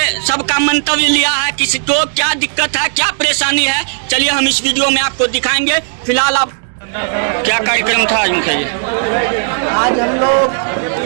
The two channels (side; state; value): left; silent; digital silence